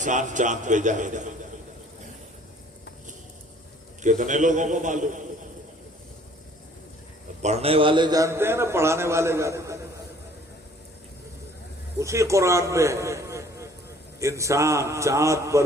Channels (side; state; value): both; normal; correlation 0.56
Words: چاند پہ جائے گا۔ کتنے لوگوں کو معلوم؟ پڑھنے والے جانتے ہیں نا، پڑھانے والے جانتے ہیں۔ اسی قرآن میں انسان چاند پر